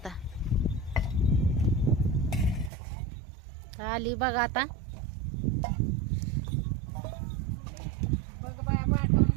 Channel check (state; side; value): drops out; left; at 2.7 s